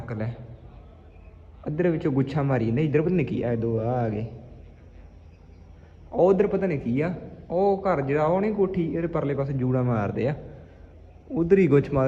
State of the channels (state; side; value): identical; both; correlation 1.00